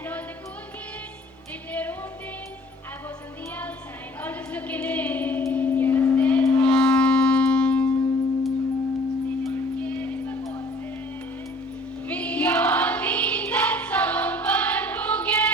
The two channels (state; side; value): normal; both; correlation 0.53